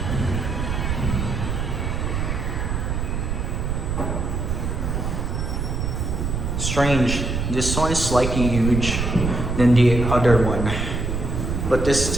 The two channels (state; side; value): noise; right; rumble, 1 dB below the sound